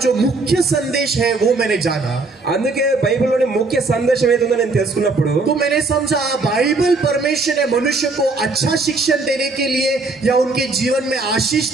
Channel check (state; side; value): quieter; left; 3.6 dB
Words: जो मुख्य संदेश है वो मैंने जाना, అందుకే బైబిల్లోని ముఖ్య సందేశం ఏదో నేను తెలుసుకున్నప్పుడు तो मैंने समझा बाइबल परमेश्वर ने मनुष्य को अच्छा शिक्षण देने के लिए या उनके जीवन में आशीष